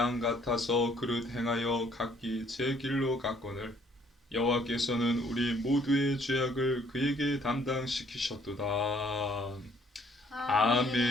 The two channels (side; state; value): both; normal; correlation 0.63